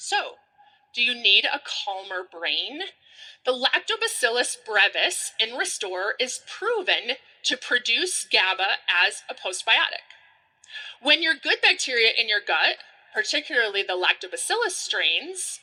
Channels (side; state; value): both; identical; correlation 1.00